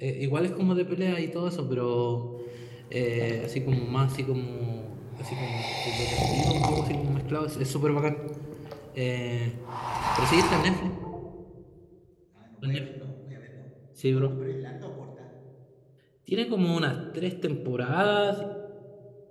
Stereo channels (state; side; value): identical; both; correlation 1.00